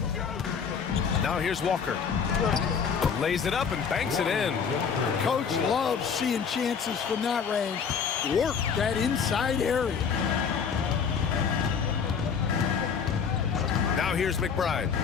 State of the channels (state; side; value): quieter; right; 6.5 dB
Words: Now here's Walker. Lays it up and banks it in. Coach loves seeing chances from that range. Work that inside area. Now here's McBride.